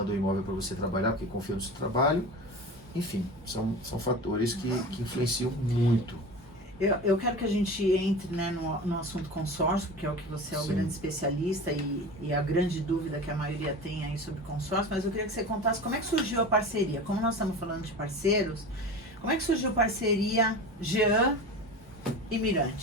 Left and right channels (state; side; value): normal; both; correlation 0.32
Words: o imóvel para você trabalhar, porque confia no seu trabalho. Enfim, são fatores que influenciam muito. Eu quero que a gente entre, né, no assunto consórcio, porque é o que você é o grande especialista e a grande dúvida que a maioria tem aí sobre consórcio, mas eu queria que você contasse como é que surgiu a parceria. Como nós estamos falando de parceiros, como é que surgiu a parceria Jean e